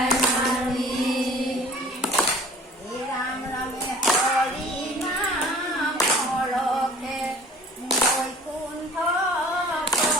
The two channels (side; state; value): both; normal; correlation 0.48